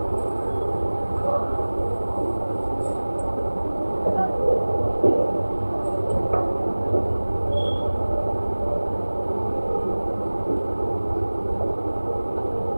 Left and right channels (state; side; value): inverted; both; correlation -1.00